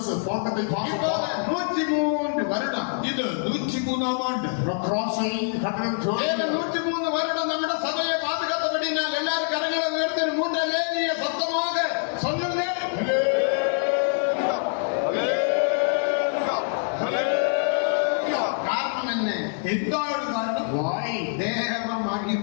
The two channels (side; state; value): right; silent; 60 dB below the other